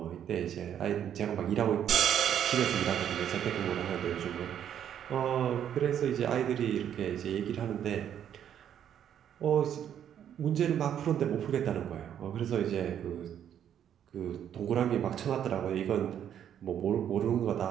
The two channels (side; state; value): left; quieter; 9.6 dB